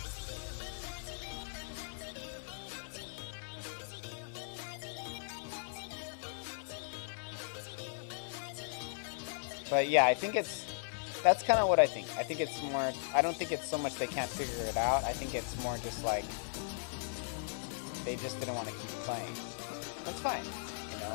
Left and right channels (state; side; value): silent; right; digital silence